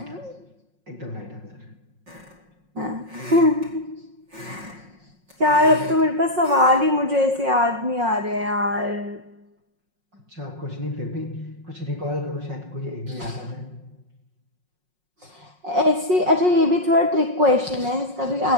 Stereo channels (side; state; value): left; late; 5.5 ms